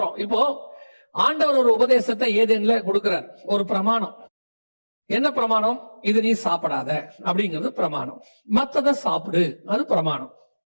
இப்போ ஆண்டவர் ஒரு உபதேசத்தை ஏதேன்ல கொடுக்கிறார், ஒரு பிரமாணம். என்ன பிரமாணம்? இது நீ சாப்பிடாத அப்படிங்கிறது பிரமாணம். மத்தத சாப்பிடு, அது பிரமாணம்.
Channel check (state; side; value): inverted; both; correlation -1.00